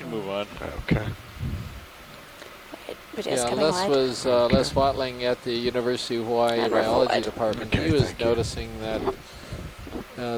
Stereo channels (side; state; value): both; identical; correlation 1.00